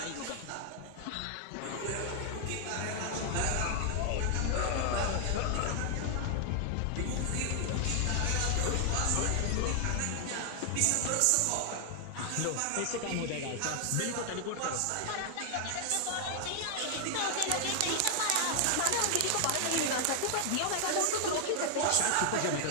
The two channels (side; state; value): both; different; correlation 0.00